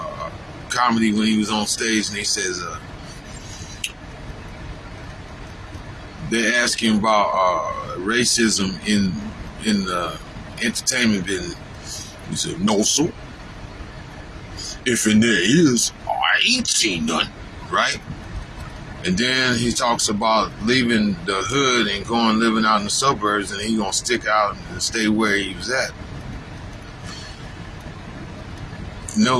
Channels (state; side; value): identical; both; correlation 1.00